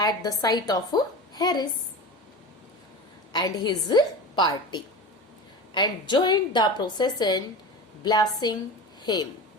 the sight of Harris and his party and joined the procession, blessing him.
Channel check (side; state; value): both; normal; correlation 0.30